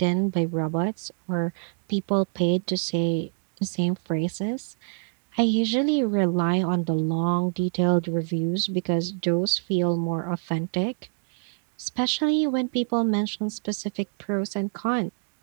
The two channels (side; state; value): left; silent; 59 dB below the other